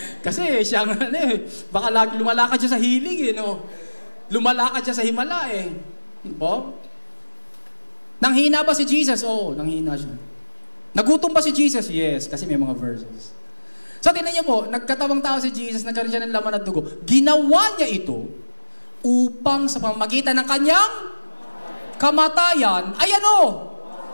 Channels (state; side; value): inverted; both; correlation -1.00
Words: Kasi siya nga baka lumalakad siya sa hilig no? Lumalakad siya sa himala Nanghina ba si Jesus? Oo, nanghina siya. Nagutom ba si Jesus? Yes, kasi may mga verses. So, tingnan niyo po, nagkatawang tao si Jesus, nagkaroon siya ng laman at dugo. Ginawa niya ito upang sa pamamagitan ng kanyang kamatayan,